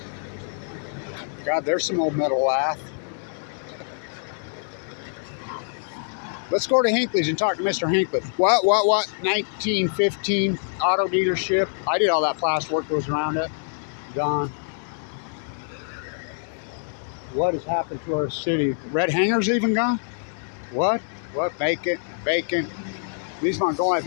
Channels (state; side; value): silent; right; digital silence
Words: God, there's some old metal lath. Let's go to Hinckley's and talk to Mr. Hinckley. What? 1915 auto dealership. I did all that plasterwork that was around it. Gone. What has happened to our city? Red Hanger's even gone? What? Vacant. These Montgomery, I